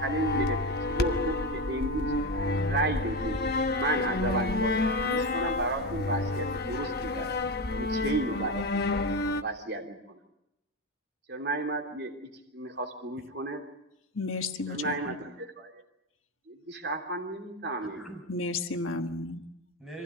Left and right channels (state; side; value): normal; both; correlation 0.17